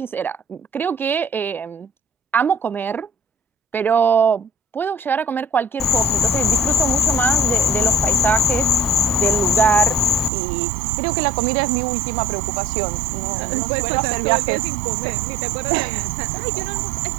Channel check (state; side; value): drops out; left; at 10.3 s